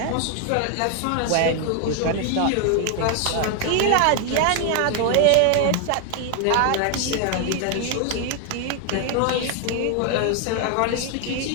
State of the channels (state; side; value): different; both; correlation 0.01